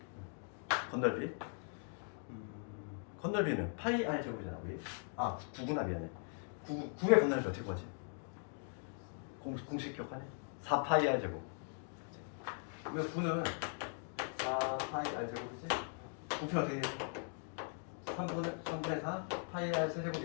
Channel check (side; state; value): right; silent; 51 dB below the other